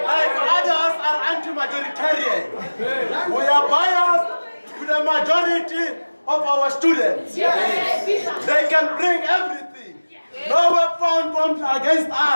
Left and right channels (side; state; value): both; inverted; correlation -1.00